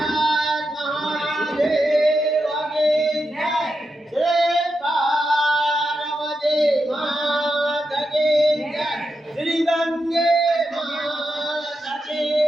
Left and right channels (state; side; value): normal; both; correlation 0.87